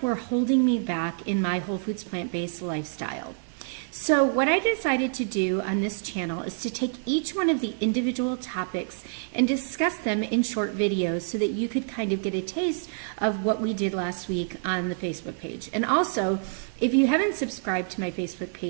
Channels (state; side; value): silent; left; digital silence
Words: were holding me back in my whole foods plant-based lifestyle. So what I decided to do on this channel is to take each one of the individual topics and discuss them in short videos so that you could kind of get a taste of what we did last week on the Facebook page. And also, if you haven't subscribed to my Facebook